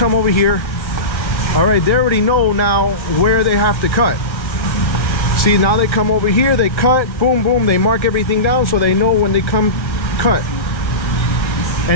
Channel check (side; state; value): right; late; 1.5 ms